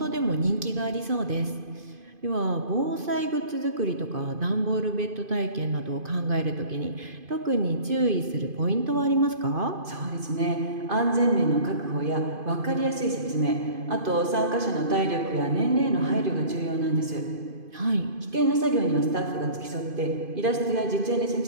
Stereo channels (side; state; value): left; late; 2.5 ms